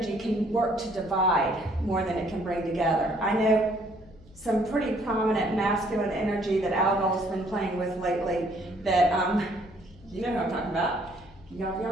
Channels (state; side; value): noise; left; hum, 24 dB below the sound